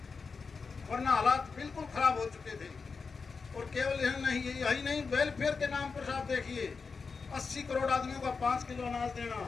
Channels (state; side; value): quieter; right; 4.9 dB